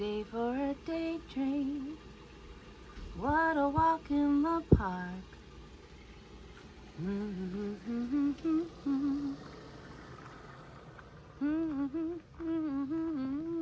for a daydream. What a walk in the park.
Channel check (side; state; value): both; identical; correlation 1.00